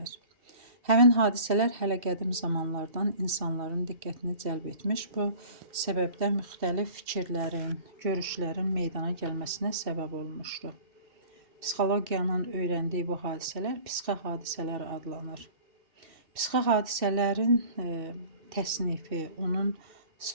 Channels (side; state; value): left; late; 2.7 ms